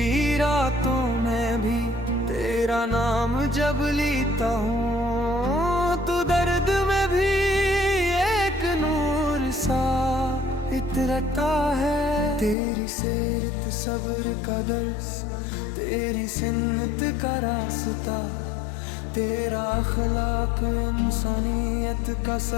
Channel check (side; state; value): right; drops out; at 12.6 s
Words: रातों में भी तेरा नाम जब लेता हूँ, तो दर्द में भी एक नूर सा इतरता है। तेरी सीरत सब्र का दर्स, तेरी सुन्नत का रास्ता, तेरा अखलाक इंसानियत का